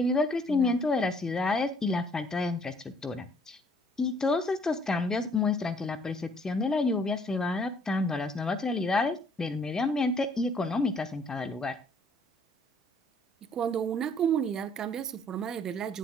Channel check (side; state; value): both; normal; correlation 0.62